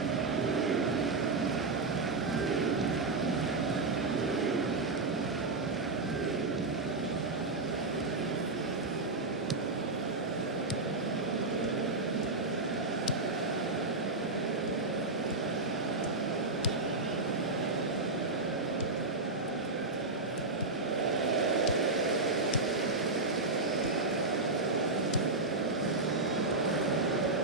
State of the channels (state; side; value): quieter; left; 3.3 dB